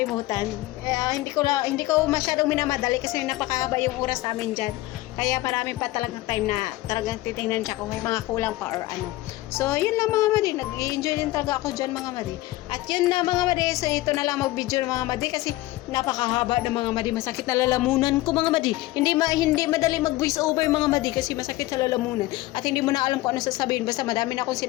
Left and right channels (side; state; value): right; quieter; 18.0 dB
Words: Hindi ko masyadong minamadali kasi napakahaba yung oras namin dyan. Kaya marami pa talagang time na talagang titingnan siya kung may mga kulang pa or ano. So, yun lang mga madi. Nag-enjoy din talaga ako dyan mga madi. At yun na mga madi. So, ito na lang mag-video ng mga madi kasi napakahaba ng mga madi. Masakit na lalamunan ko mga madi. Hindi madali mag-voice over mga madi kasi masakit sa lalamunan. At hindi mo na alam kung ano sasabihin. Basta madami na akong